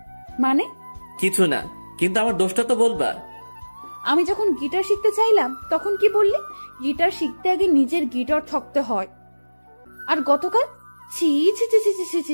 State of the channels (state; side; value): inverted; both; correlation -1.00